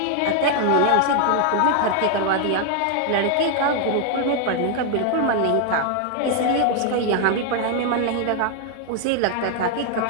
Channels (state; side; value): different; both; correlation 0.00